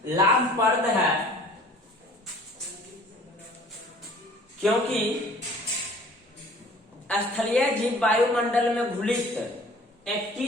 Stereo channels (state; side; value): normal; both; correlation 0.50